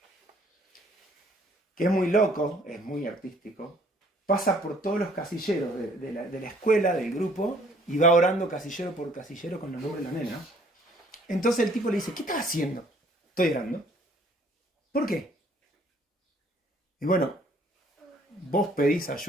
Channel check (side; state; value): both; normal; correlation 0.60